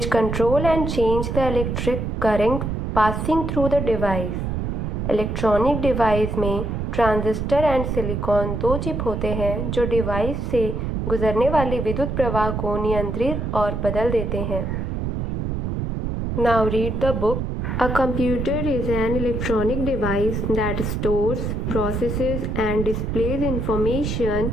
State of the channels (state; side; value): noise; right; rumble, 2 dB below the sound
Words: control and change the electric current passing through the device. Electronic device में transistor and silicon दो chip होते हैं जो device से गुजरने वाले विद्युत प्रवाह को नियंत्रित और बदल देते हैं. Now read the book. A computer is an electronic device that stores, processes and displays information